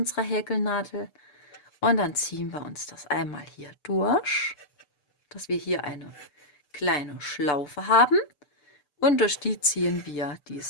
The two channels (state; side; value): late; right; 6.8 ms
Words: Häkelnadel. Und dann ziehen wir uns das einmal hier durch, dass wir hier eine kleine Schlaufe haben. Und durch die ziehen wir